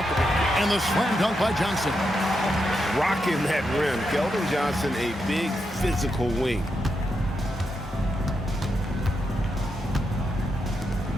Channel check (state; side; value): normal; both; correlation 0.84